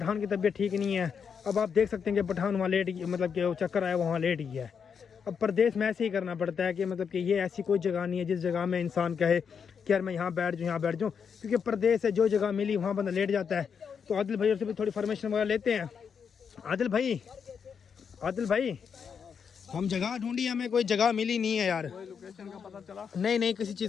की तबीयत ठीक नहीं है। अब आप देख सकते हैं कि पठान वहाँ लेट गया, मतलब कि वो चक्कर आया वहाँ लेट गया है। अब परदेश में ऐसे ही करना पड़ता है कि मतलब कि ये ऐसी कोई जगह नहीं है जिस जगह में इंसान कहे कि यार मैं यहाँ बैठ जाऊँ। क्योंकि परदेश है, जो जगह मिली वहाँ बंदा लेट जाता है। तो आदिल भाई से भी थोड़ी फॉर्मेशन वगैरह लेते हैं। आदिल भाई हम जगह ढूंढी, हमें कोई जगह मिली नहीं है यार। कोई लोकेशन का पता चला? नहीं किसी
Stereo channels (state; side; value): quieter; right; 6.7 dB